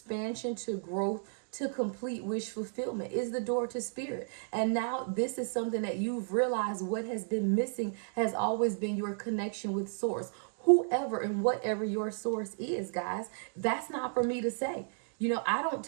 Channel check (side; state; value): left; silent; digital silence